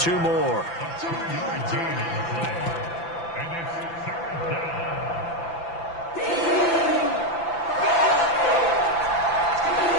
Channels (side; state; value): right; late; 5.9 ms